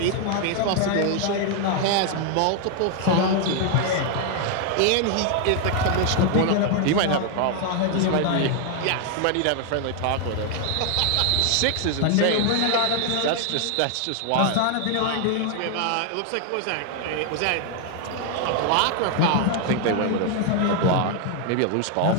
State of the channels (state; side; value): different; both; correlation 0.00